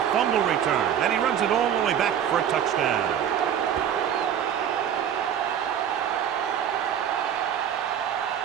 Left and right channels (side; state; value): left; quieter; 9.3 dB